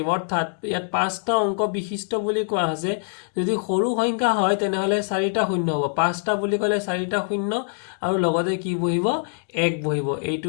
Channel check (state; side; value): silent; right; digital silence